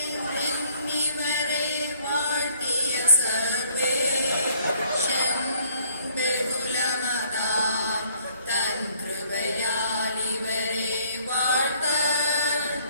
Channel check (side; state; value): both; inverted; correlation -0.62